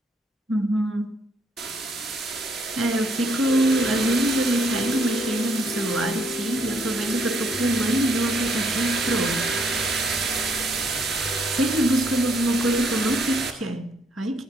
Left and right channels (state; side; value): normal; both; correlation 0.70